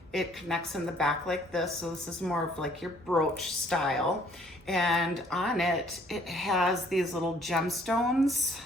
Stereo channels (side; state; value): both; normal; correlation 0.61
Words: It connects in the back like this, so this is more of like your brooch style. And on it, it has these little gemstones